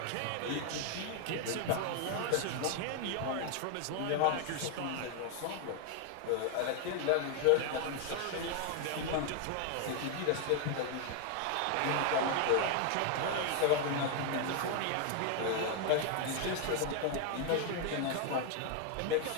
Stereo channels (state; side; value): different; both; correlation 0.00